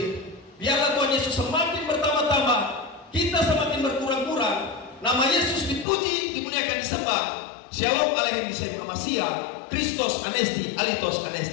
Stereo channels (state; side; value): drops out; right; at 5.9 s